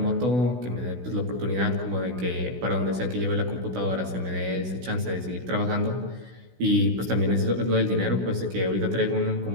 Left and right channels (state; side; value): late; left; 16 ms